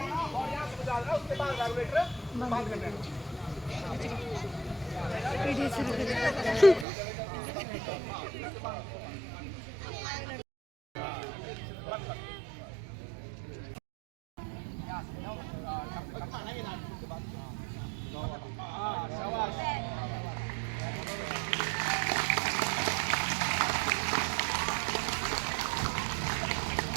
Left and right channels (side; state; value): left; drops out; at 6.9 s